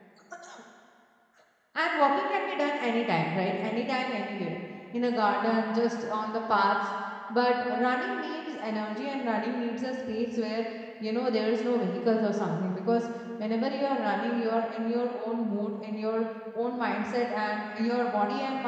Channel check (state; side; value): identical; both; correlation 1.00